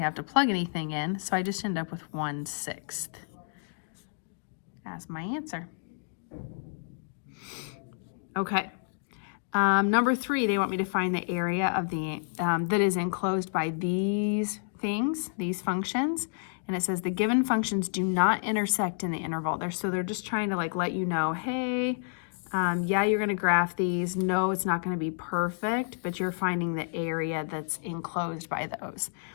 have to plug anything in, so I just end up with 1/6 as my answer. Okay. Number 3, they want me to find the area of the that is enclosed by these things, these functions. And it says the given functions do not intersect in the interval. So they're just trying to like let you know, hey, yeah, you're going to graph these. No, it's not going to be perfect, but you're finding the area that's enclosed by those.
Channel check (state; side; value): silent; right; digital silence